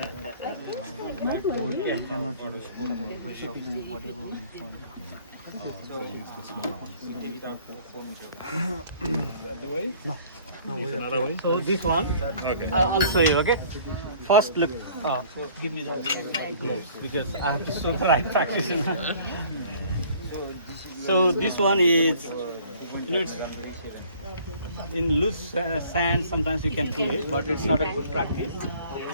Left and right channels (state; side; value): inverted; both; correlation -0.53